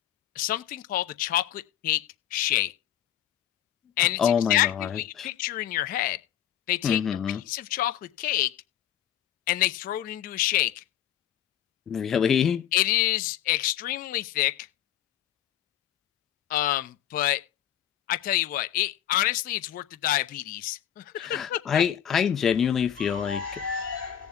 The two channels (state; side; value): quieter; right; 10.8 dB